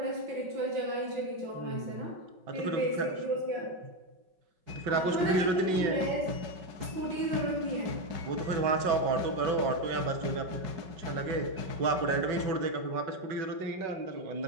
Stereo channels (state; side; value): late; left; 5.3 ms